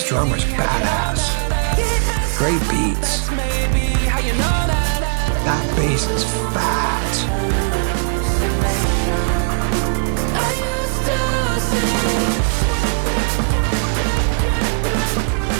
drummer's badass. Great beats. That bass is fat.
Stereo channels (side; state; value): left; silent; 60 dB below the other